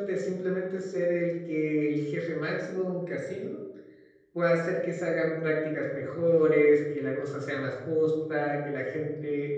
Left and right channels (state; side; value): identical; both; correlation 1.00